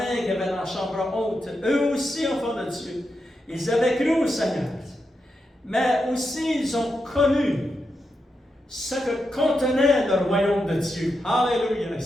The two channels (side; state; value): both; normal; correlation 0.86